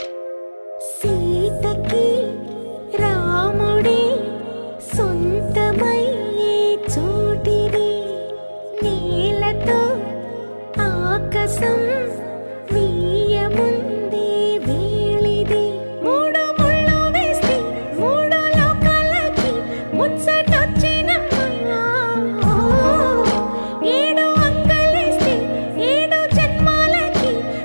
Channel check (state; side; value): inverted; both; correlation -1.00